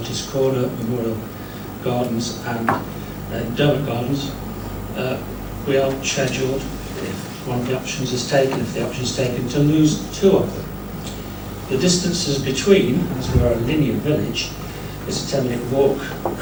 Corner, Memorial Gardens and Derbyshire Gardens, we are scheduled, if one of the options is taken, to lose 2 of them. The distances between, as we are a linear village, is a 10-minute walk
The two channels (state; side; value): identical; both; correlation 1.00